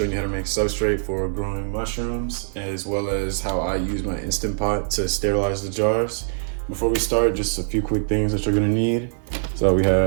you how to make substrate for growing mushrooms, as well as how I use my Instant Pot to sterilize the jars. Before we start, just a few quick things that you're going to need. So we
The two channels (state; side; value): silent; left; digital silence